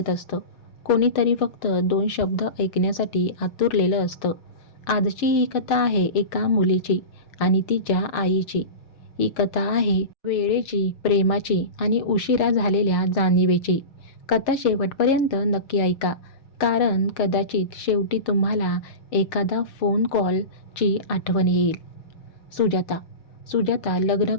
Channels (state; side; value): late; right; 6.6 ms